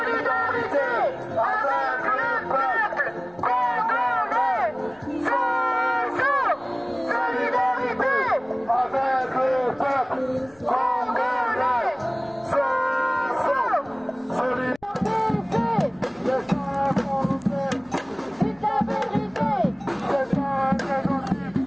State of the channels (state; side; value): noise; left; rumble, 30 dB below the sound